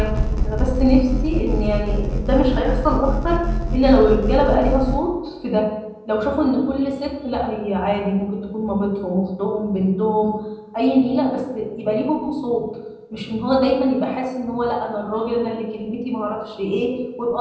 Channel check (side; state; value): both; identical; correlation 1.00